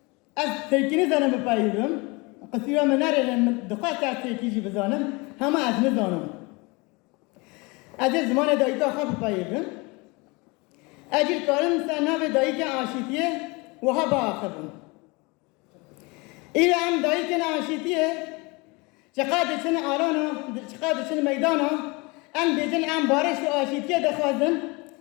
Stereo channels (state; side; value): quieter; right; 26.8 dB